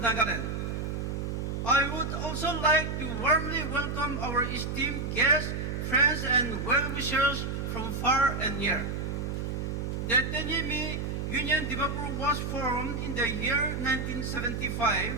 Nagaland. I would also like to warmly welcome our esteemed guests, friends, and well-wishers from far and near. The Tenyimi Union Dimapur was formed in the year 1975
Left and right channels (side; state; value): right; noise; hum, 3 dB below the sound